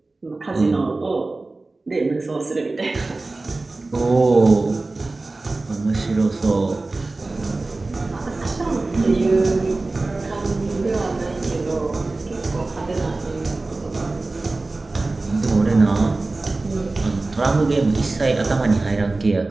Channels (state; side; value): quieter; left; 3.3 dB